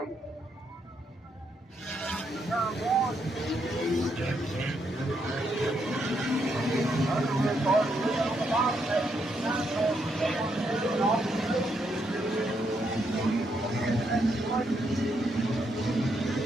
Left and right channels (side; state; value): both; normal; correlation 0.78